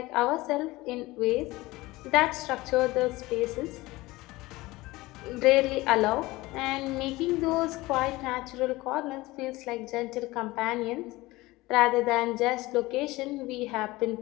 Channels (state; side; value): quieter; right; 20.0 dB